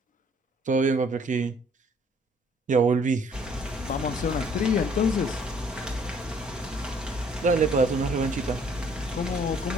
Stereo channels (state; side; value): normal; both; correlation 0.60